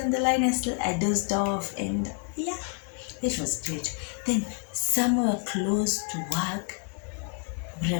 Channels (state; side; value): quieter; right; 34.5 dB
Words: the line, I dozed off, and yeah, it was great. Then somewhere close to work, we